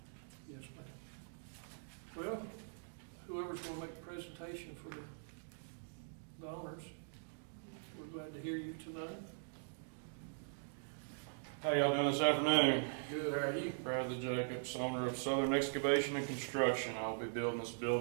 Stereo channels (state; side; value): silent; left; digital silence